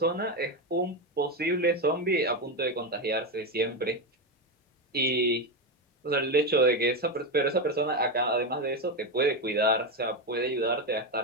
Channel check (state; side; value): normal; both; correlation 0.11